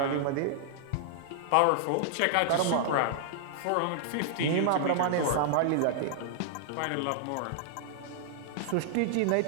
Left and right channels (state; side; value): different; both; correlation -0.01